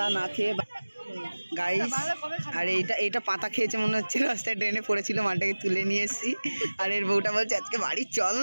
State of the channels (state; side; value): inverted; both; correlation -1.00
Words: না খেয়ে গাইস, আর এইটা পাতা খেয়েছে মনে হচ্ছে, রাস্তায় ড্রেনে পড়েছিল, মালটাকে তুলে নিয়ে এসেছি। আর এর বউটা বলছে আজকে বাড়ি চল